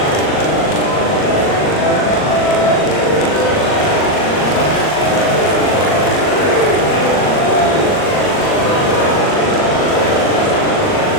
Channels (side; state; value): right; late; 39 ms